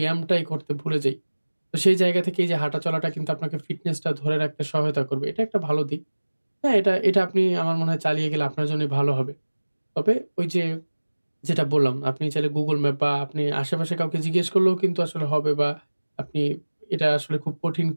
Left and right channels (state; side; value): inverted; both; correlation -1.00